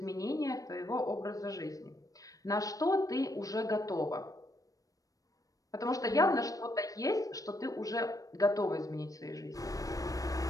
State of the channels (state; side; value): late; right; 0.17 ms